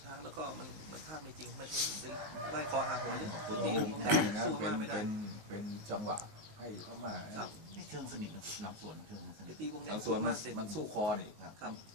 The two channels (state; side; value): late; left; 19 ms